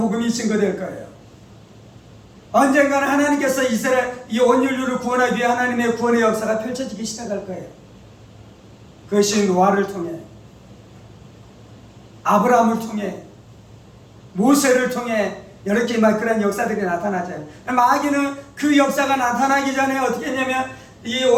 증거될 거예요. 언젠가는 하나님께서 이스라엘 이 온 인류를 구원하기 위해 하나님의 구원의 역사가 펼쳐지기 시작할 거예요. 그것이 노아를 통해, 아브라함을 통해, 모세를 통해 이렇게 막 그런 역사들이 나타나죠. 마귀는 그 역사가 나타나기 전에 어떻게 했냐면 이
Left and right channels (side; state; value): both; identical; correlation 1.00